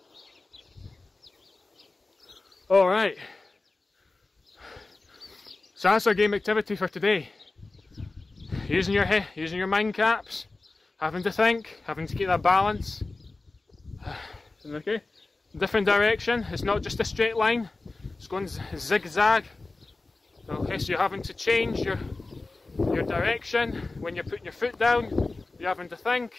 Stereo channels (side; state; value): right; quieter; 3.4 dB